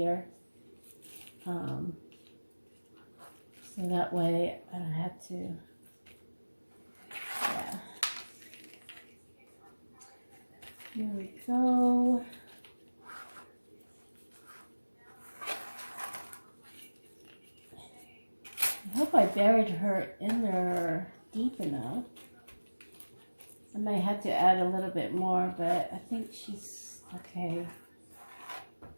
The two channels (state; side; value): inverted; both; correlation -1.00